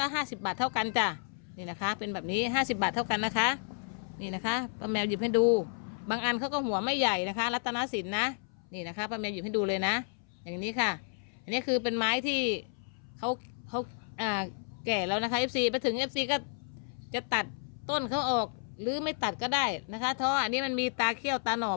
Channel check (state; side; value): silent; right; 57 dB below the other